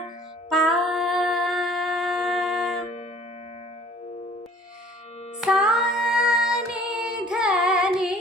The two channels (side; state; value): both; normal; correlation 0.52